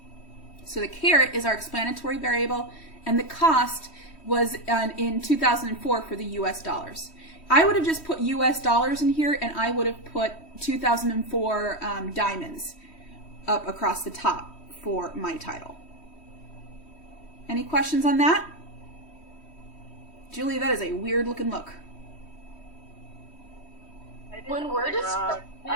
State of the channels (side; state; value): right; late; 3.1 ms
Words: So the carat is our explanatory variable, and the cost was in 2004 for the US dollars. I would have just put US dollars in here, and I would have put 2004 diamonds up across the top for my title. Any questions on that? Julie, that is a weird looking look. When we're just,